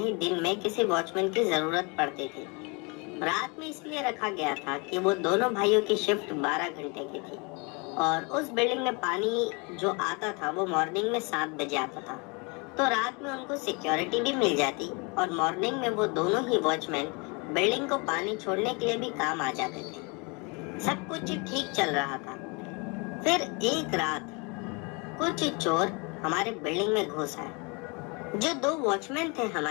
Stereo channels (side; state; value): right; quieter; 30.6 dB